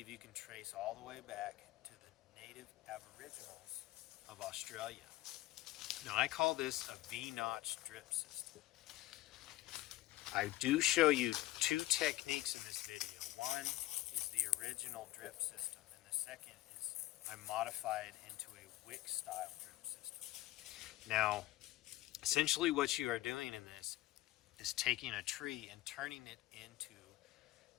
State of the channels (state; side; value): quieter; right; 16.5 dB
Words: you can trace all the way back to the native aboriginals of Australia. Now I call this a V-notch drip system. I do show you two techniques in this video. One is the original drip system, and the second is I modified into a wick style drip system. Now, essentially what you are doing in this is taking a tree and turning it into